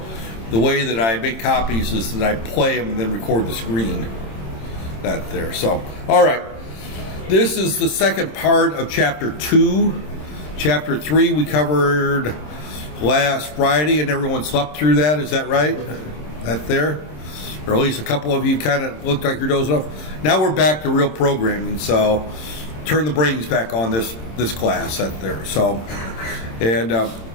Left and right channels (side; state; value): right; late; 26 ms